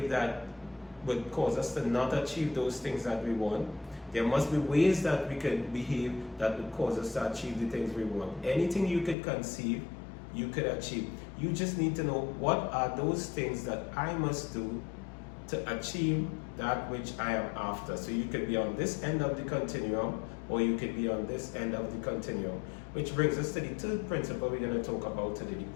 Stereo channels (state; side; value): drops out; right; at 9.2 s